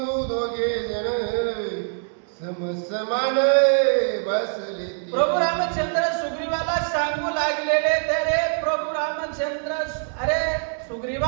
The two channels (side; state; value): left; silent; digital silence